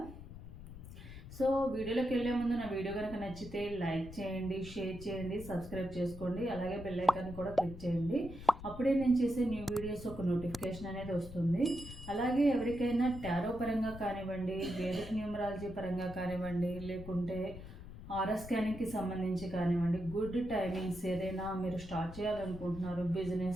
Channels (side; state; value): left; noise; rumble, 13 dB below the sound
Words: సో వీడియోలోకి వెళ్ళే ముందు నా వీడియో కనుక నచ్చితే లైక్ చేయండి, షేర్ చేయండి, సబ్స్క్రైబ్ చేసుకోండి, అలాగే బెల్ ఐకాన్ కూడా క్లిక్ చేయండి. అప్పుడే నేను చేసే న్యూ వీడియోస్ ఒక నోటిఫికేషన్ అనేది వస్తుంది. అలాగే ఎవరికైనా టారో పరంగా కానివ్వండి, వేదిక్ న్యూమరాలజీ పరంగా కానివ్వండి, లేకుంటే ఆర్ఆర్ స్కానింగ్కి సంబంధించి కానివ్వండి, గుడ్ టైమింగ్స్ ఏదైనా మీరు స్టార్ట్ చేయాలనుకుంటున్నారు,